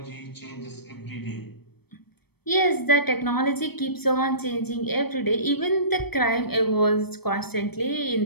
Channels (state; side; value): late; right; 0.97 ms